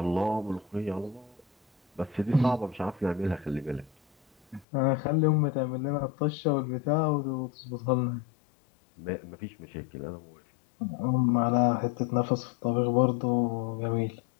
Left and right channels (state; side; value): drops out; right; at 4.7 s